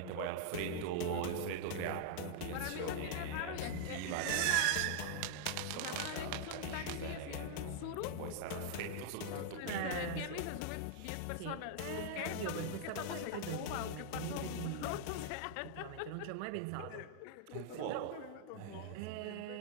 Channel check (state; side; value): different; both; correlation 0.00